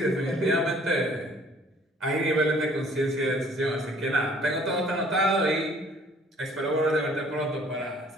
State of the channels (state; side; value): normal; both; correlation 0.57